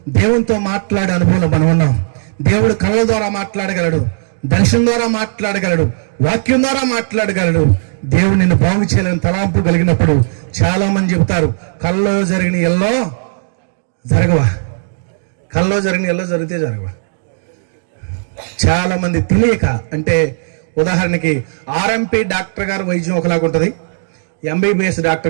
దేవునితో మాట్లాడే అనుభవంలో మనం ఉన్నాం. దేవుడు కళ్ళ ద్వారా మాట్లాడగలడు, దర్శనం ద్వారా మాట్లాడగలడు, వాక్యం ద్వారా మాట్లాడగలడు. దేవుడు నిన్ను బాగు చేయాలని తలాంపు కలిగినప్పుడు చాలా మంది చెబుతారు, కల్లో జరిగిన ఎల్లో జరగవా, కల్లో జరిగిన ఎల్లో జరిగితే జరగవా. చాలా మంది తెలియక, అంటే ఉదాహరణకి ఆర్ఎంపీ డాక్టర్ గారు వైద్యం ఒకలాగా ఉంటుంది, ఎంబీబీఎస్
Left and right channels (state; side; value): silent; left; digital silence